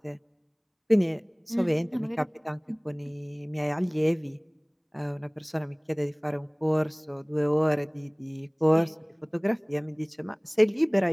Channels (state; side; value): identical; both; correlation 1.00